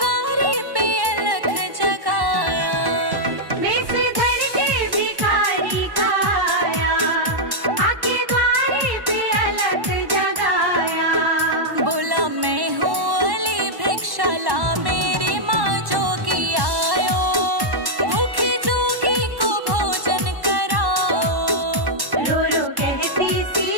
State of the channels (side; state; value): left; late; 1.1 ms